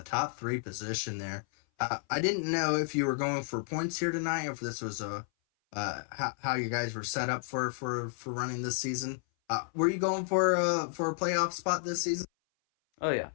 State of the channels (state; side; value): silent; right; 57 dB below the other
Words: top 3 position there. I didn't know if you were going for points here tonight, or if this was how you guys were set up for running this season. Were you going for a playoff spot this season? Oh yeah.